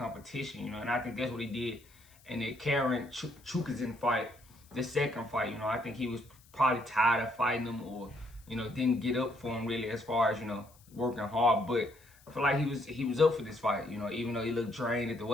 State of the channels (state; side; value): noise; left; hiss, 27 dB below the sound